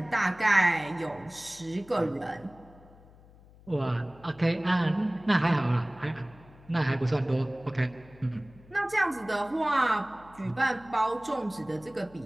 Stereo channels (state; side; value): noise; left; hum, 24 dB below the sound